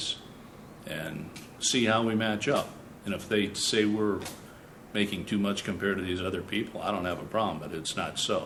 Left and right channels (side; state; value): both; identical; correlation 1.00